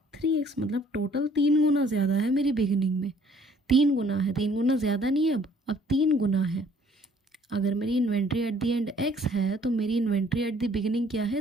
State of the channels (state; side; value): normal; both; correlation 0.59